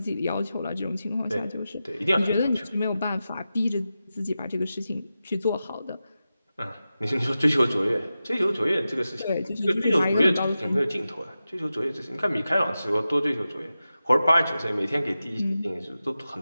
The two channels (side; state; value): both; inverted; correlation -0.93